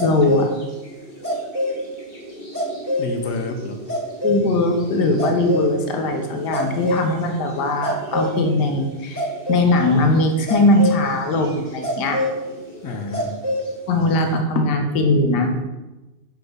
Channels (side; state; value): left; late; 2.8 ms